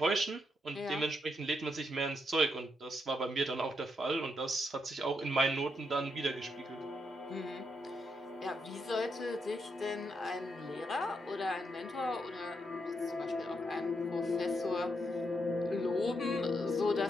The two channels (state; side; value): normal; both; correlation 0.80